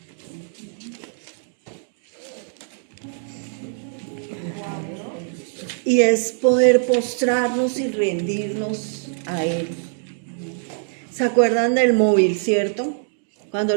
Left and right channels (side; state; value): left; silent; digital silence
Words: Y es poder postrarnos y rendirnos a Él. ¿Se acuerdan del móvil, cierto? Cuando